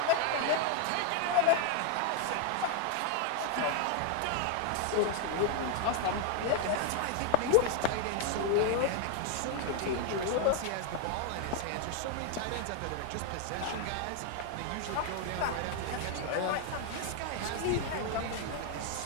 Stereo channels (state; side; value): different; both; correlation 0.01